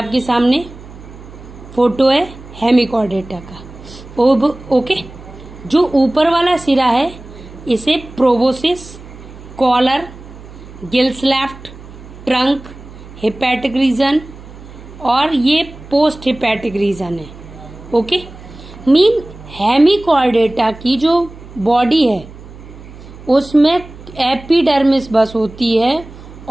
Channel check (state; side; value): noise; right; hum, 17 dB below the sound